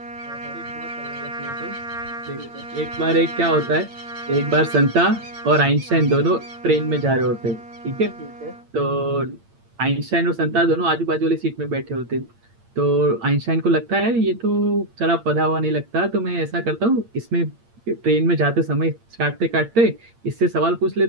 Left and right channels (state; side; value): late; left; 8.7 ms